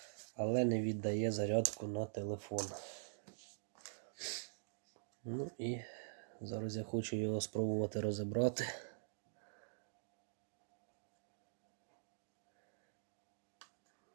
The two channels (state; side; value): silent; left; digital silence